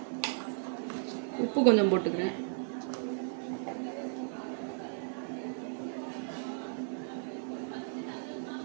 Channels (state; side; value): silent; left; 54 dB below the other